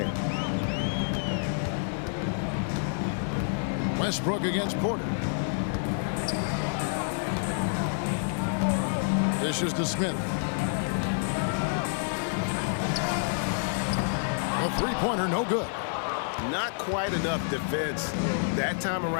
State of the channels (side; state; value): right; silent; digital silence